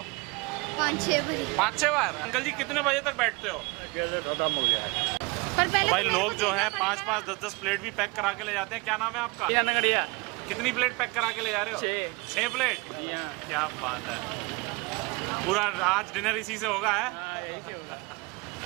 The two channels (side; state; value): left; quieter; 26.7 dB